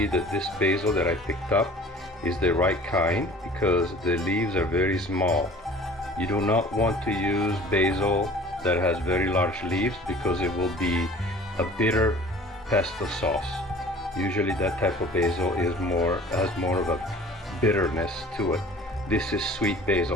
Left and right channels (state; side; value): normal; both; correlation 0.46